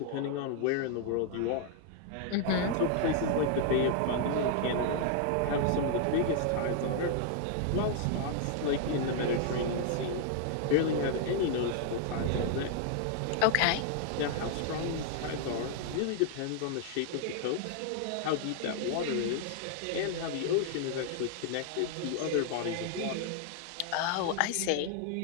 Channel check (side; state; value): both; different; correlation 0.00